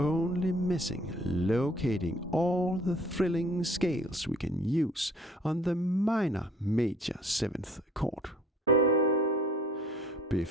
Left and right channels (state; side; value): normal; both; correlation 0.54